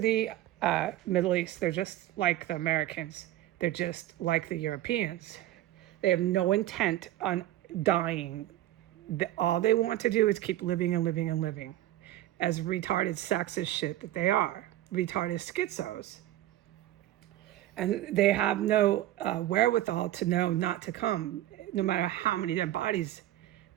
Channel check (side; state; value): left; quieter; 14.3 dB